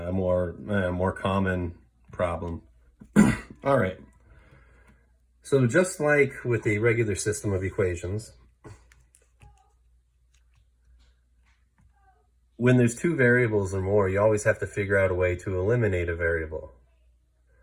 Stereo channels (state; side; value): identical; both; correlation 1.00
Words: common problem. All right. So just like with a regular system of equations, when there's 2 variables or more, you always have to figure out a way to eliminate a variable.